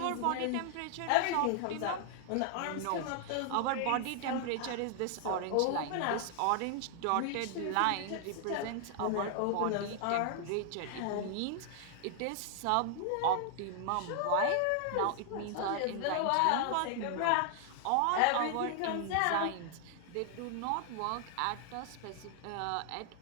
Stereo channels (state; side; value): different; both; correlation 0.00